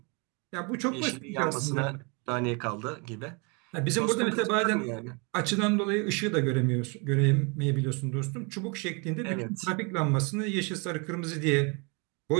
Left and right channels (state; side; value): quieter; left; 32.2 dB